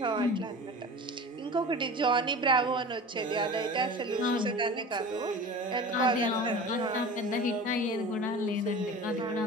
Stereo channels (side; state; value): both; normal; correlation 0.36